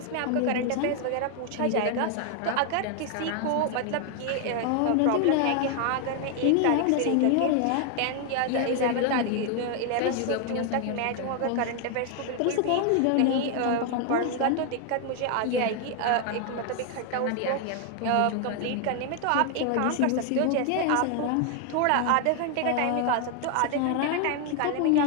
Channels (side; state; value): both; different; correlation 0.00